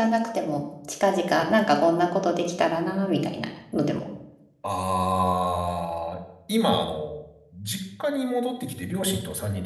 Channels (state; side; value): identical; both; correlation 1.00